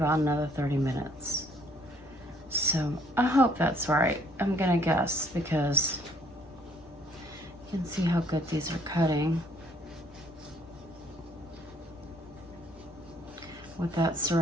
another 30 minutes. So I hope that's right. I'm gonna guess because you can see how good these are cutting. With that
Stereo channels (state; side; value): normal; both; correlation 0.63